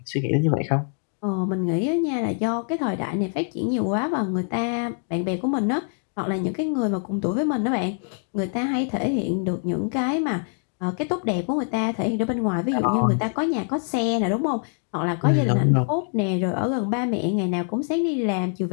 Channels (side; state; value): right; silent; 56 dB below the other